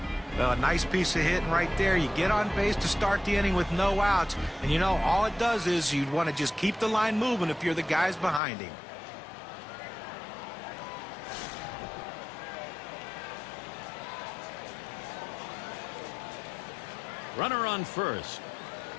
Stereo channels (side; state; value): right; drops out; at 8.4 s